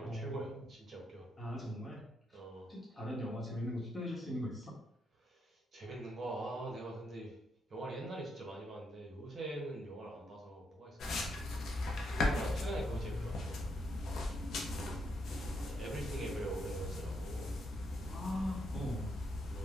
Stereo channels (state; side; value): normal; both; correlation 0.78